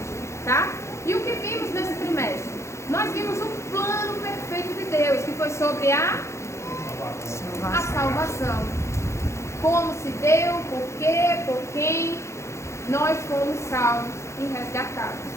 tá? E o que vimos nesse trimestre? Nós vimos o plano perfeito de Deus, que foi sobre a salvação. Como se deu, por quê, por quem nós fomos salvos e resgatados,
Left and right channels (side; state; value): right; late; 0.14 ms